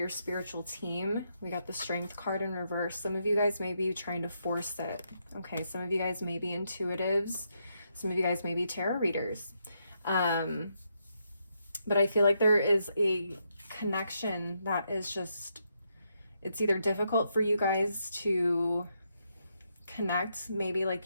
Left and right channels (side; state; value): both; inverted; correlation -0.80